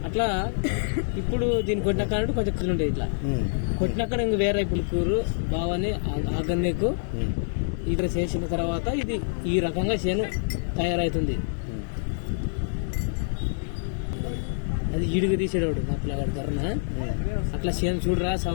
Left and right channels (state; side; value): silent; right; digital silence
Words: అట్లా ఇప్పుడు దీన్ని కొట్టినాక కొంచెం కళ్ళు ఉండేది. ఇట్లా కొట్టినాక ఇంక వేరే పులుకూరు బావని ఆగన్నేకు ఇక్కడ చేసిన తర్వాత ఇది ఈ రకంగా చేను తయారవుతుంది. అది ఈడుగు తీసేవాడు మా పిల్లగాడు ధరన. అట్లా చేను చూడరా